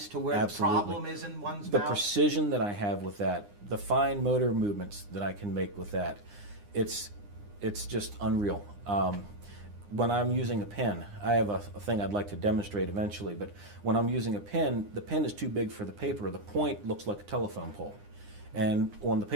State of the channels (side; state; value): left; late; 9.8 ms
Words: to where Absolutely. the problem is in one's The mouth. precision that I have with that, the fine motor movements that I can make with that, it's just unreal. When I'm using a pen, I have a thing I'd like to demonstrate eventually, but when I'm using a pen, the pen is too big for the paper. The point looks like a telephone pole. And on the